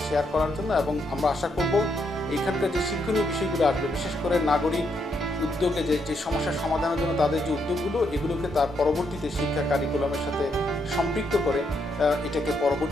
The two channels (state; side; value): normal; both; correlation 0.77